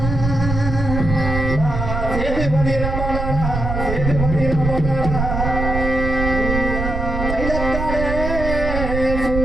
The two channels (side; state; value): right; noise; rumble, 3 dB below the sound